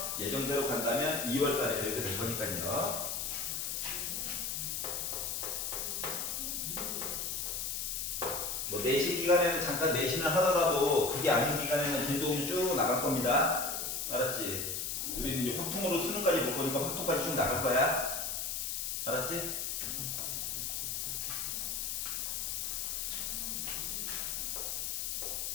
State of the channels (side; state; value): left; noise; hiss, 2 dB below the sound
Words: 예정대로 간다면 2월달에 배우게 될 거니까요. 뭐 내신 기간에는 잠깐 내신을 하더라도 그게 아닌 기간에는 진도군이 쭉 나갈 겁니다. 알았지? 우리는 이제 확통으로 수능까지 볼 거니까 확통까지 쭉 나갈 거야. 알았지?